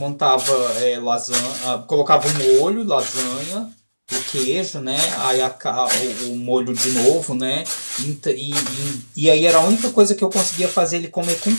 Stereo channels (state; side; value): inverted; both; correlation -1.00